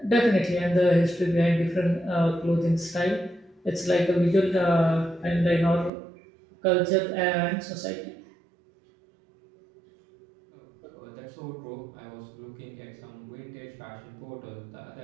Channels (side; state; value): left; drops out; at 5.9 s